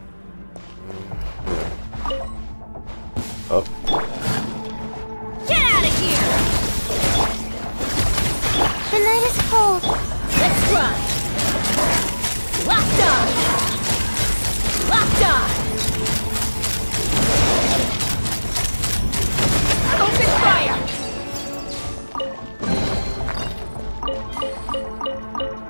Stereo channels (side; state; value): both; inverted; correlation -1.00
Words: Oh. Get out of here! The night is cold. Let's run! Locked on! Locked on! Open fire!